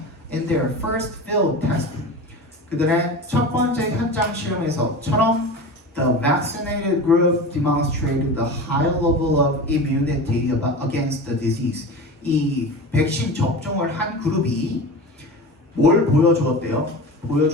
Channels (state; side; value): normal; both; correlation 0.30